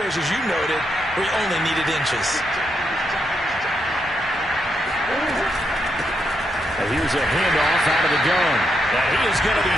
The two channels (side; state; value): both; normal; correlation 0.81